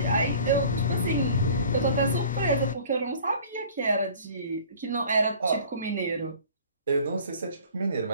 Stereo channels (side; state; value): both; inverted; correlation -0.47